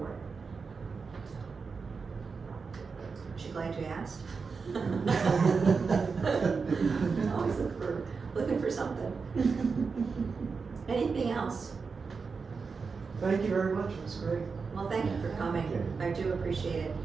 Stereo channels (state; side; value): quieter; left; 5.0 dB